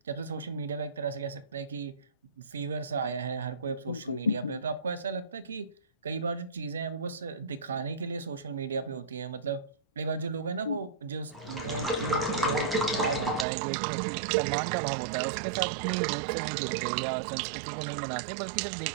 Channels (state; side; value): drops out; left; at 13.5 s